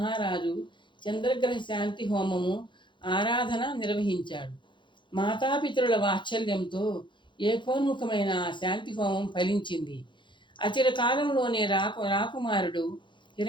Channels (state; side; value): late; right; 0.23 ms